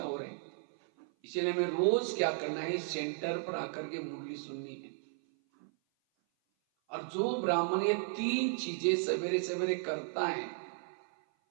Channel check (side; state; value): left; silent; 55 dB below the other